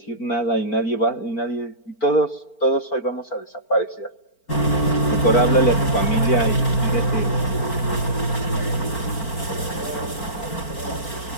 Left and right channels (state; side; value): late; right; 4.4 ms